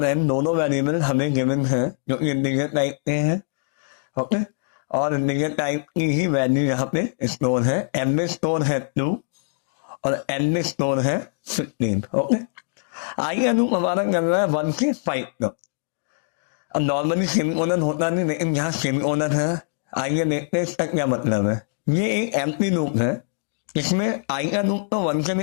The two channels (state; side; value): silent; right; digital silence